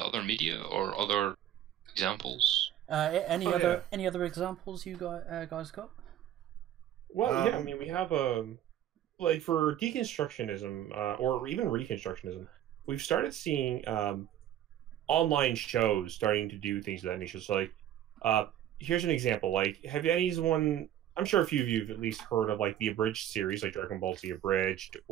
other media or other examples? Any other examples you guys got? Well, yeah. I mean, we have like for deconstructionism or even reconstructionism, we've started seeing online shows starting to do things of that nature. So, like, here's an example. Like, have anyone? I'm sure a few of you have at least heard of like the abridged series, like Dragon Ball Z abridged,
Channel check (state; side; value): quieter; left; 11.4 dB